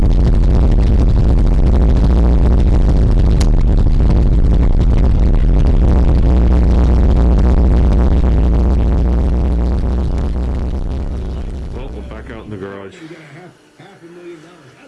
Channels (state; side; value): identical; both; correlation 1.00